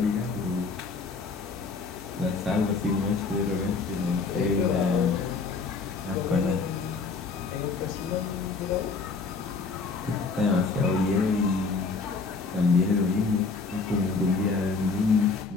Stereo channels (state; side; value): quieter; right; 4.5 dB